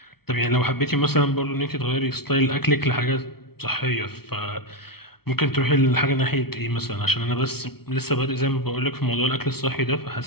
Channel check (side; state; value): right; late; 0.95 ms